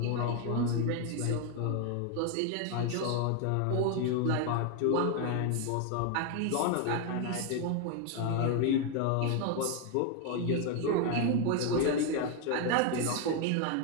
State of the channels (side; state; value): both; different; correlation 0.01